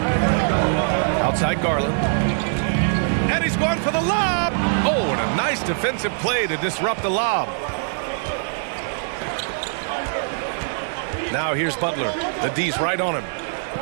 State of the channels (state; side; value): silent; left; digital silence